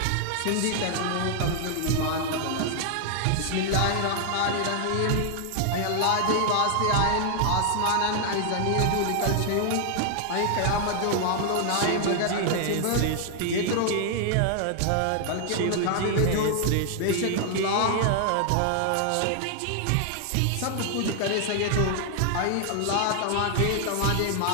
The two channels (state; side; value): different; both; correlation 0.00